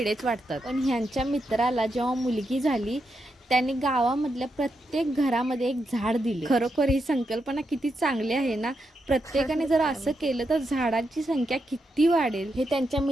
वाटतात. पण ह्यांच्या मित्राला जेव्हा मुलगी झाली त्यांनी गावामधल्या प्रत्येक घरामध्ये एक झाड दिले. खरोखर ही संकल्पना किती चांगली आहे ना. प्रत्येकाने जर असं केलं तर झाडांची संख्या किती वाढेल. हे त्यांच्या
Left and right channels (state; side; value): normal; both; correlation 0.84